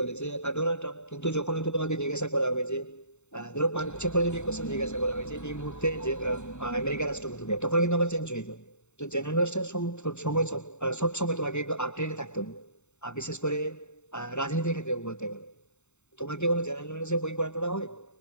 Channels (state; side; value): late; right; 0.82 ms